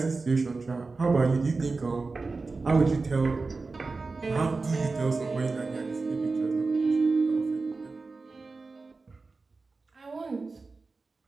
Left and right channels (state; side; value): quieter; left; 3.9 dB